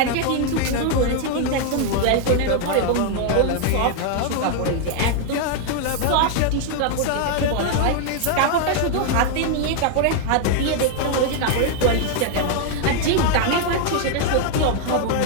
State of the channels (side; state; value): both; different; correlation 0.00